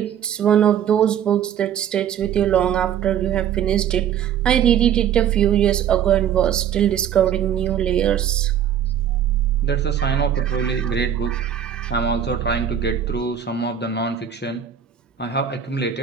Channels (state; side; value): quieter; left; 9.1 dB